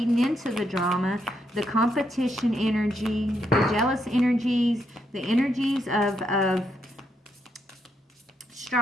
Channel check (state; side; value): normal; both; correlation 0.78